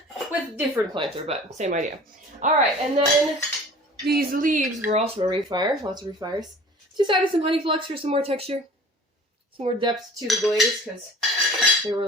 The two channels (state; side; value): normal; both; correlation 0.45